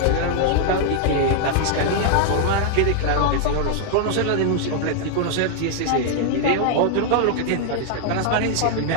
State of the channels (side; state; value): both; different; correlation 0.00